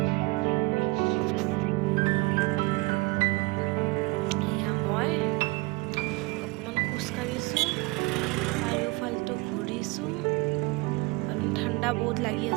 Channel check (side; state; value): left; quieter; 24.1 dB